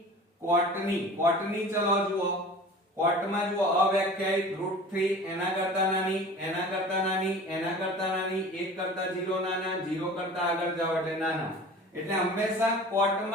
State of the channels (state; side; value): normal; both; correlation 0.41